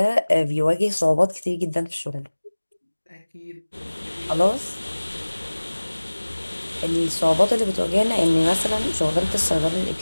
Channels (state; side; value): inverted; both; correlation -1.00